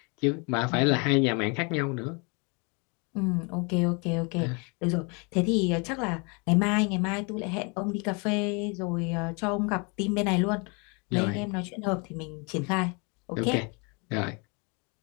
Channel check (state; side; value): quieter; right; 32.1 dB